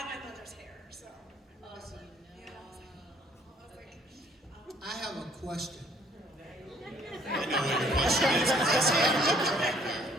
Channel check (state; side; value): normal; both; correlation 0.61